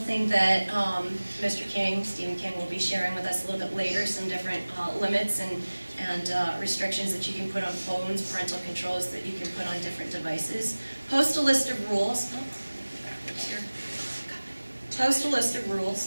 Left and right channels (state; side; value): inverted; both; correlation -1.00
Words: that Mr. King, Stephen King, will be sharing with us a little bit later, some different limits and restrictions that you can put on phones, parental controls that you can put on different devices. Post a list of rules. Backwards here. Post a list of